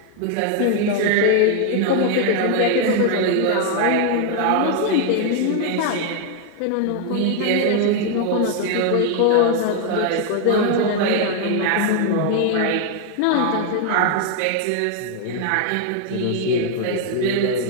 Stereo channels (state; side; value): different; both; correlation 0.00